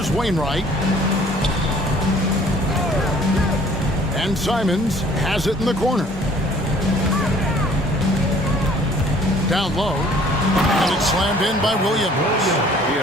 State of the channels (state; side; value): normal; both; correlation 0.55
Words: Wainwright. And Simons has it in the corner. Down low. And it's slammed in by Williams. You